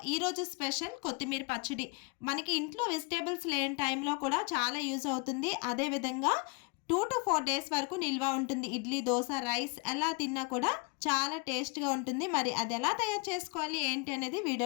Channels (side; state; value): right; quieter; 31.2 dB